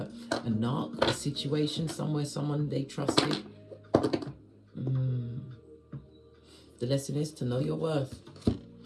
narc, a situation somewhere, someone they trusted. The lesson is to know your worth.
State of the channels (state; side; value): identical; both; correlation 1.00